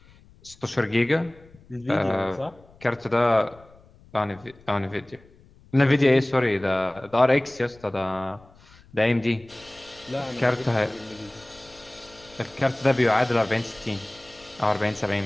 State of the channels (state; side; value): noise; left; rumble, 26 dB below the sound